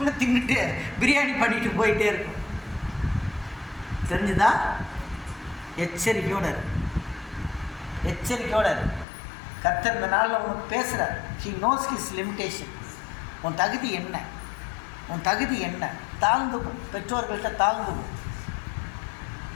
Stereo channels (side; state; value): right; drops out; at 9.1 s